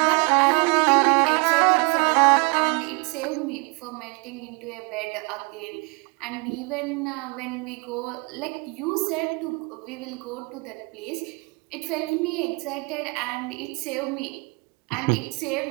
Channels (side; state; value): left; quieter; 32.0 dB